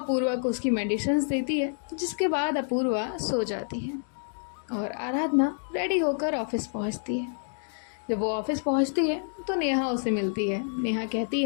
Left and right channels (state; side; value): silent; right; digital silence